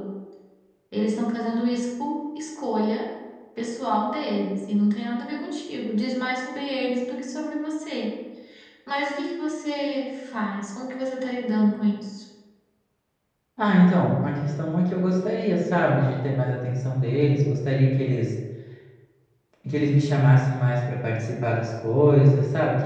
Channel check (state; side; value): identical; both; correlation 1.00